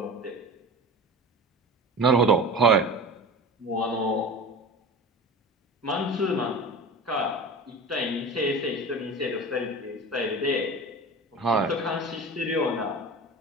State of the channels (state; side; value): normal; both; correlation 0.33